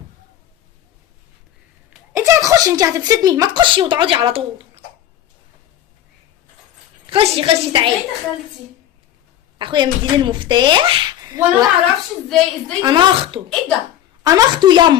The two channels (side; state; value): right; quieter; 11.6 dB